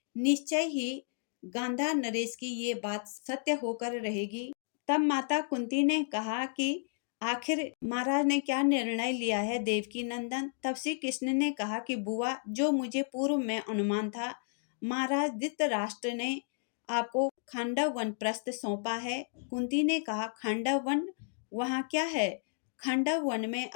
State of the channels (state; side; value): silent; right; digital silence